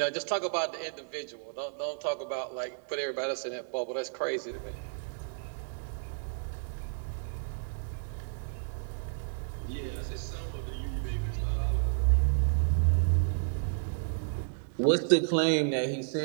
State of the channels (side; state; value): left; silent; digital silence